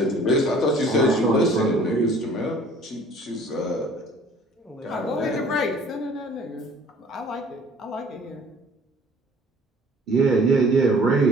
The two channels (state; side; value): normal; both; correlation 0.52